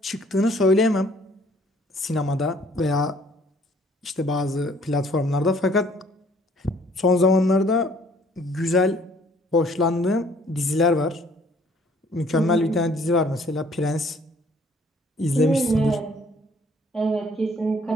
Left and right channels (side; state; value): both; normal; correlation 0.60